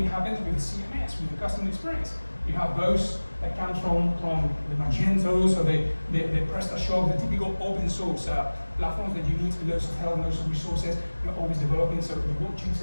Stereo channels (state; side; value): inverted; both; correlation -1.00